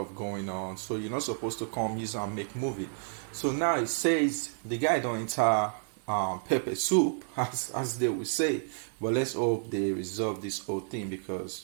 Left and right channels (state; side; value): silent; left; 57 dB below the other